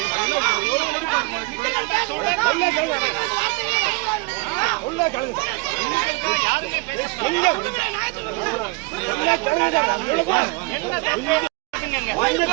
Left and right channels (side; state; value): left; quieter; 26.9 dB